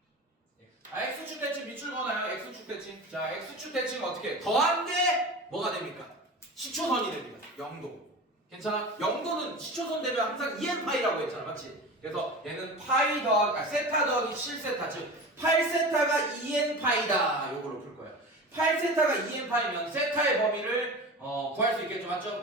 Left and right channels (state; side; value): normal; both; correlation 0.32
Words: X축 대칭 밑줄 거나요? X축 대칭. 자, X축 대칭 어떻게? 더한 게 뭐가 됩니까? 시초선이 됩니다. 0도. 괜찮아? 0도는 시초선 되면 항상 2n 파이라고 했잖아, 맞지? 그래서 얘는 파이 세타 더하기 7세타, 즉 8세타가 2n 파이다. 요거로 풀 거예요. 8세타가 2n 파이면 세타의 범위를 구할 수 있겠죠, 맞죠?